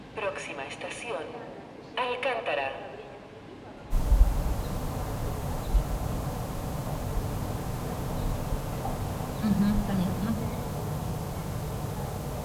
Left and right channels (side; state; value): both; identical; correlation 1.00